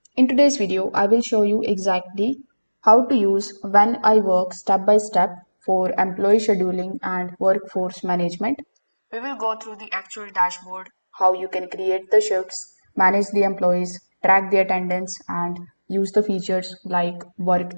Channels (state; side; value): inverted; both; correlation -1.00